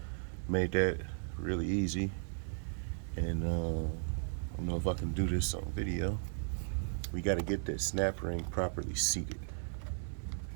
Made that really easy. And I don't know if I can do this on video. We got to get that snap ring properly seated.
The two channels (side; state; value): left; silent; digital silence